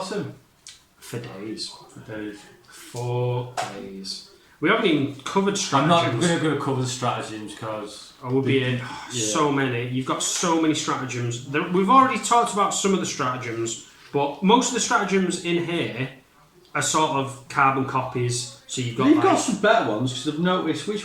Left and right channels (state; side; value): identical; both; correlation 1.00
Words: for days. For days. 4 days. We haven't even covered I'm not stratagems. going to cover the stratagems because We'll be in so many. You've got so many stratagems. We've already talked about some of the stratagems, but most of the stratagems in here are sort of carbon copies. So you've got you've got some better ones because I've noticed.